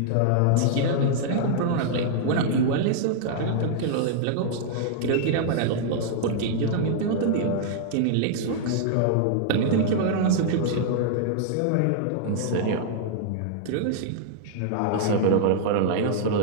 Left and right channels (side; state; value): both; different; correlation -0.01